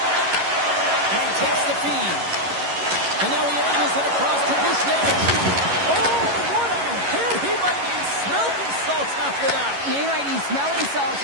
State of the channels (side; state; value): left; late; 11 ms